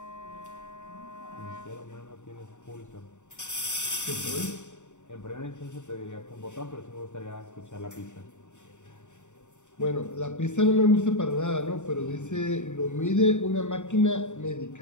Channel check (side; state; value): right; late; 0.84 ms